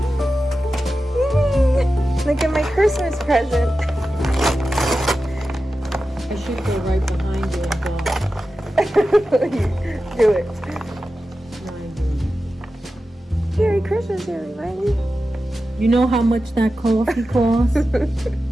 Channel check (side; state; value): both; normal; correlation 0.92